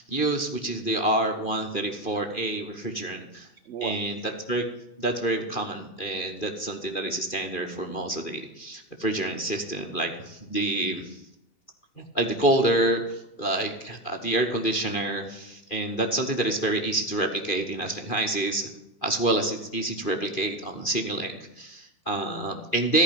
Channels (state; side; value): late; right; 2.4 ms